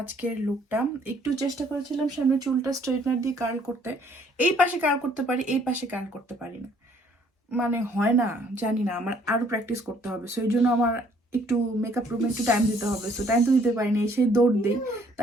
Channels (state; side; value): normal; both; correlation 0.62